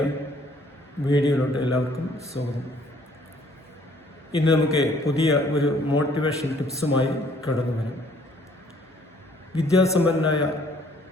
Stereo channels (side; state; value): both; normal; correlation 0.60